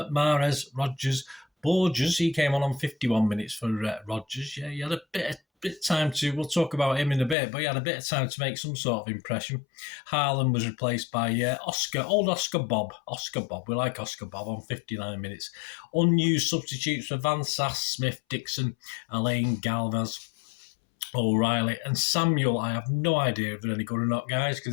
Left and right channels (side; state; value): right; drops out; at 7.4 s